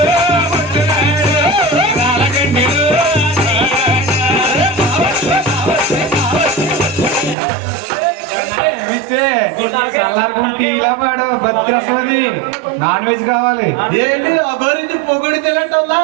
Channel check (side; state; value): left; drops out; at 7.4 s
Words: రాళ్ళగంటలు చల్లారుకుంటే ఇలా పాడు భద్రస్వది నాన్ వెజ్ కావాలి ఏంటి అగోరించి పొగుడి తెలియటందా